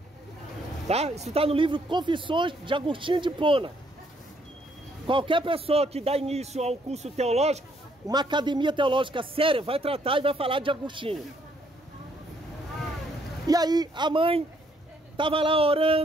Tá? Isso está no livro Confissões de Agostinho de Hipona. Qualquer pessoa que dá início a um curso teológico, uma academia teológica séria, vai tratar e vai falar de Agostinho. E aí a mãe estava lá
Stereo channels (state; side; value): normal; both; correlation 0.69